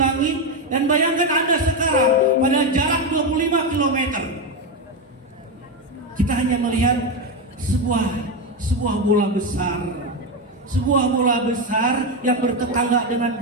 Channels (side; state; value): both; normal; correlation 0.10